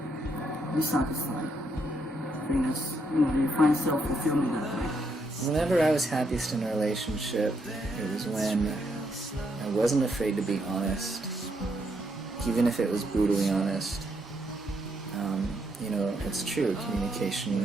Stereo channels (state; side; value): normal; both; correlation 0.76